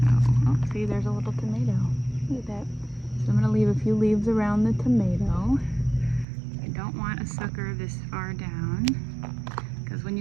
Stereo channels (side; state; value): left; drops out; at 6.2 s